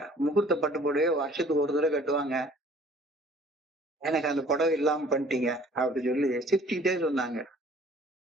முகூர்த்த பட்டு புடவையே வருஷத்துக்கு ஒரு தடவை கட்டுவாங்க, எனக்கு அந்த புடவை இல்லாம பண்ணிட்டீங்க அப்படி சொல்லி சிரிச்சுக்கிட்டே சொன்னாங்க.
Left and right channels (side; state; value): both; normal; correlation 0.54